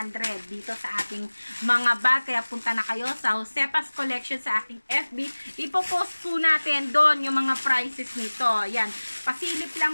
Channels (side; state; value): both; inverted; correlation -1.00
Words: dito sa ating mga bag. Kaya punta na kayo sa Josepa's Collection sa aking FB. Ipopost po natin doon yung mga prices nito. Yan, pasilip